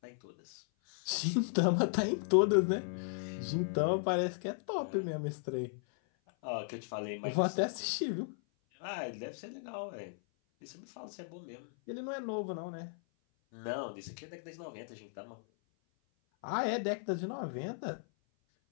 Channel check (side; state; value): right; silent; 54 dB below the other